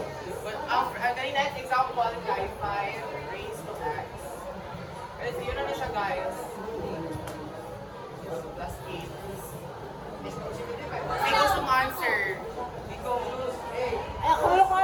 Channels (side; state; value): both; identical; correlation 1.00